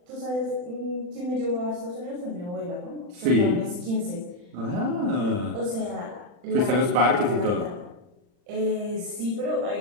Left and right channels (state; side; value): late; left; 40 ms